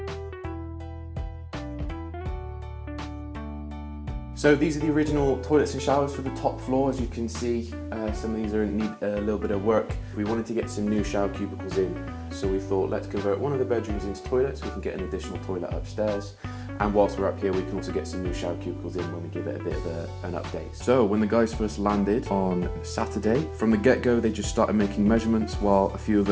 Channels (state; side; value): identical; both; correlation 1.00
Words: So these are the original toilets and showers for the top floor. As you can see, some of these need a little bit of work. We wanted to get some new shower cubicles in, so we thought let's convert one of the bedrooms into toilets. We can get an additional toilet upstairs, and whilst we're up here we can also get some new shower cubicles in when we give it a bit of an update. So when the guys first landed on Saturday, from the get-go they just started making measurements while a few of